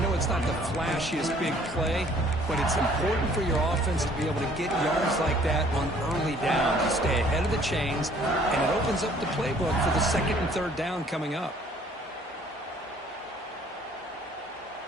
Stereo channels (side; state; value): both; normal; correlation 0.58